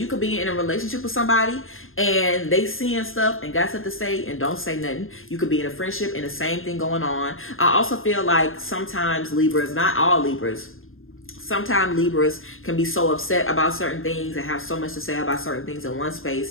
could be in a relationship with somebody and they seeing stuff and got stuff to say and don't say nothing. You could be in a friendship and the same thing going on. I also feel like sometimes Libras, not all Libras, sometimes Libras can be so upset about certain things and have so much to say about certain things in one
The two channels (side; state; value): right; late; 0.59 ms